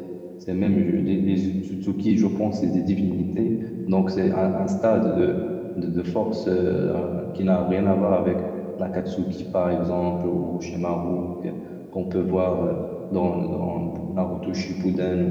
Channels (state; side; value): identical; both; correlation 1.00